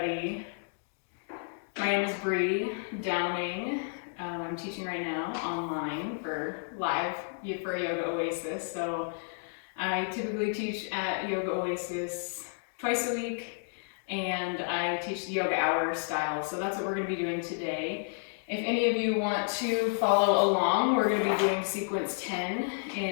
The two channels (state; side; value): silent; right; digital silence